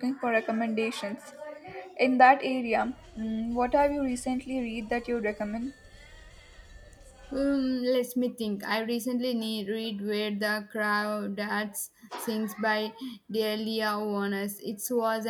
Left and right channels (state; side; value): identical; both; correlation 1.00